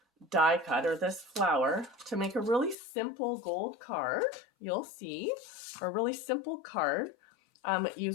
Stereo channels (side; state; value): right; drops out; at 2.8 s